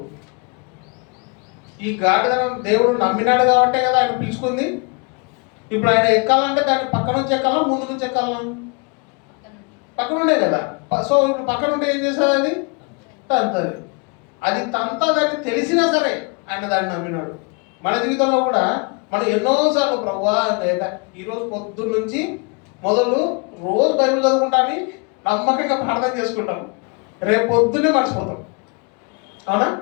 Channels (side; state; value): right; quieter; 33.5 dB